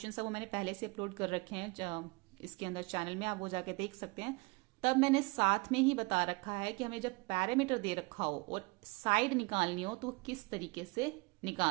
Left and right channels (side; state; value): left; quieter; 27.0 dB